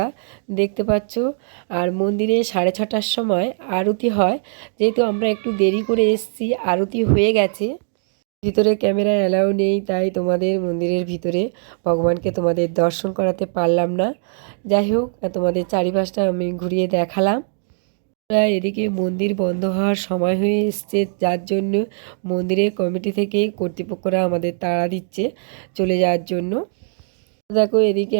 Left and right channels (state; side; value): silent; left; digital silence